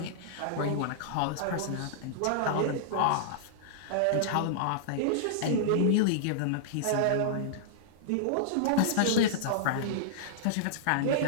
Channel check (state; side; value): different; both; correlation -0.02